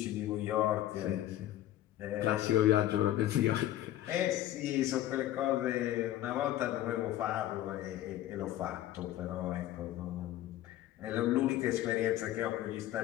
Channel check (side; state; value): right; quieter; 13.6 dB